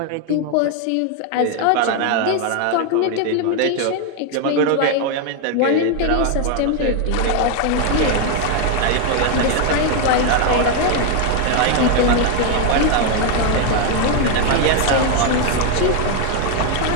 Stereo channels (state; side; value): different; both; correlation 0.01